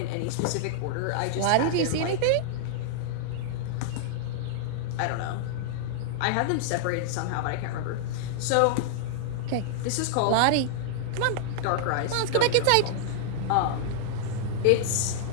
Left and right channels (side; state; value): both; different; correlation -0.01